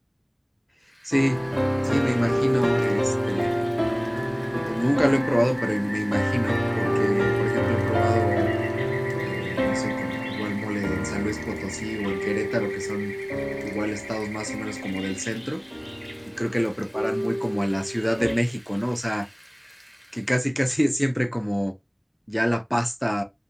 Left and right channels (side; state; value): both; identical; correlation 1.00